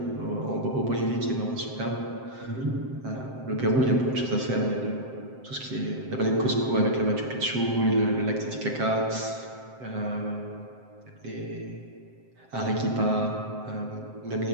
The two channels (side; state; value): left; late; 7.7 ms